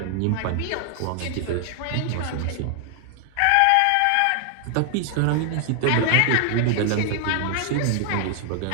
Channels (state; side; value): different; both; correlation 0.00